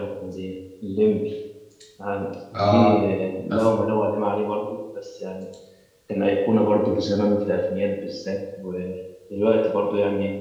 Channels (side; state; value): both; identical; correlation 1.00